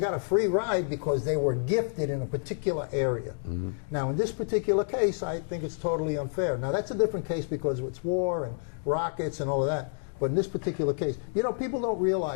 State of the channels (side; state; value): right; silent; digital silence